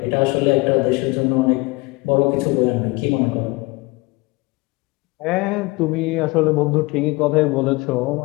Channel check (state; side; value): quieter; right; 24.0 dB